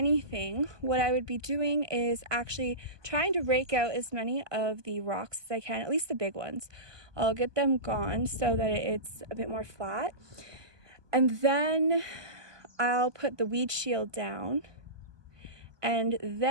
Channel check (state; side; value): late; left; 1.2 ms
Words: what I would be doing is actually trying to rake out as many of the rocks as I can, at least the big ones. I'll get them gone so that it's a bit more flat, and then I'll put the weed shield down, and